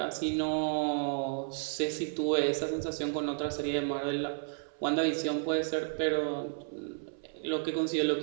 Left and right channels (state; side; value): silent; left; 56 dB below the other